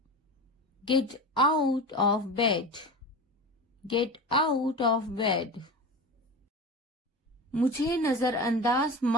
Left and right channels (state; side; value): normal; both; correlation 0.28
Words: Get out of bed. Get out of bed. मुझे नजरअंदाज